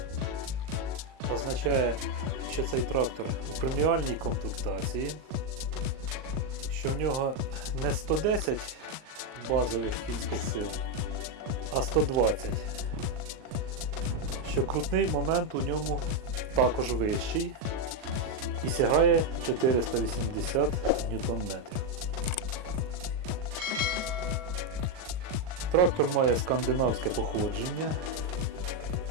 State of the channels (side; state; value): left; late; 38 ms